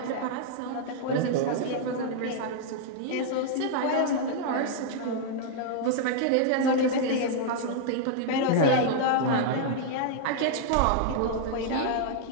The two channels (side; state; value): both; different; correlation -0.01